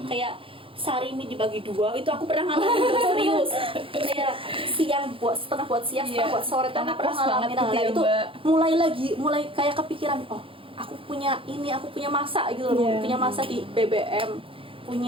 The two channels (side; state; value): left; late; 0.26 ms